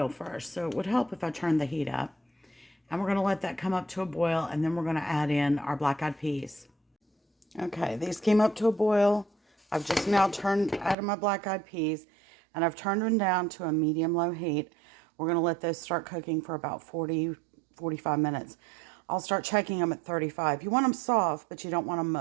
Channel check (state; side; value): drops out; left; at 11.0 s